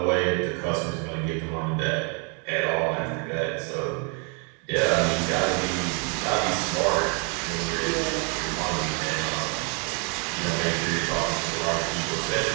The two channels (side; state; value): left; quieter; 36.5 dB